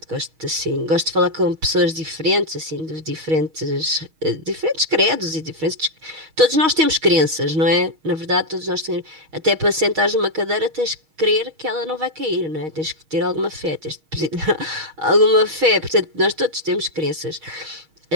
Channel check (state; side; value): late; left; 6.3 ms